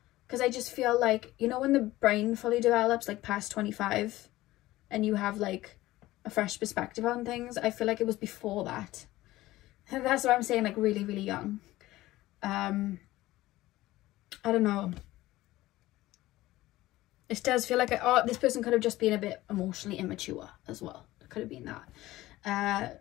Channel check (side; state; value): right; quieter; 17.0 dB